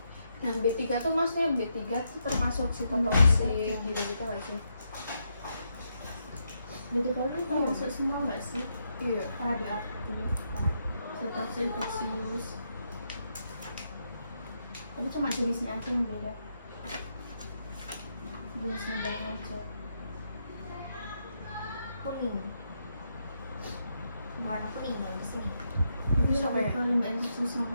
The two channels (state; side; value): inverted; both; correlation -0.80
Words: Nah B3 tuh maksudnya B3 tuh termasuk sitotoksik gitu-gitu nggak sih? B3 itu termasuk semua nggak sih? Iya. Radioaktif, sitotoksik, infeksius. Tapi cuma jenisnya aja yang beda. Jenisnya beda aja. Kuning. Warna kuning yang di sini. Itu Sama sampai ya? ke limbah infeksius sama